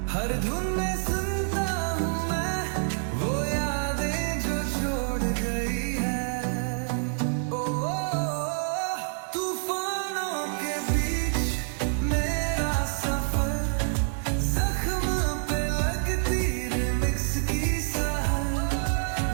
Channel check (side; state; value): left; silent; 58 dB below the other